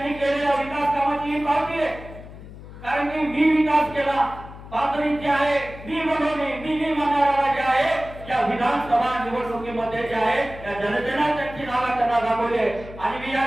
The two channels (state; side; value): noise; left; hum, 15 dB below the sound